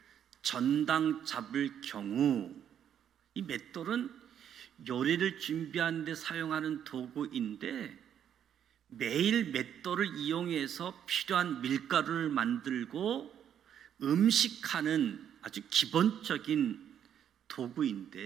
전당 잡을 경우, 이 맷돌은 요리를 준비하는 데 사용하는 도구인데 매일 맷돌을 이용해서 필요한 밀가루를 만들고 음식하는 아주 기본적인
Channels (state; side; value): quieter; left; 9.3 dB